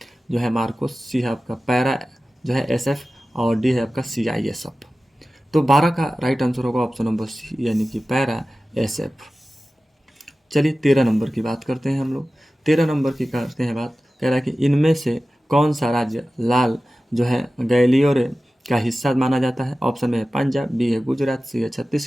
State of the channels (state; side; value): normal; both; correlation 0.95